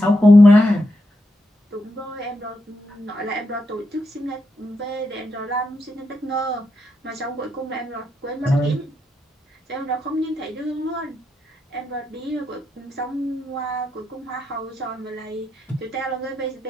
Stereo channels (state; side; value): normal; both; correlation 0.83